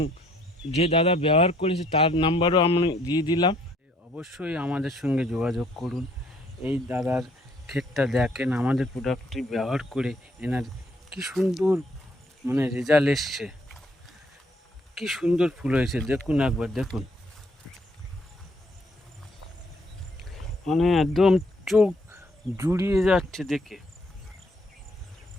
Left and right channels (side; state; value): both; normal; correlation 0.66